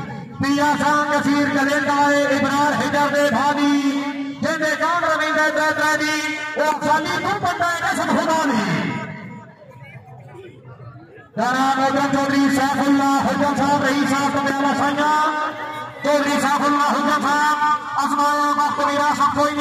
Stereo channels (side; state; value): both; identical; correlation 1.00